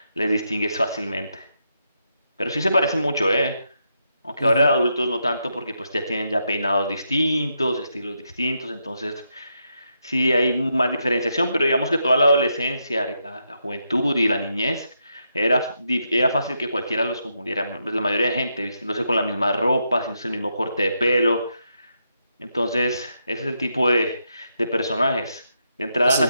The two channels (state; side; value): inverted; both; correlation -0.82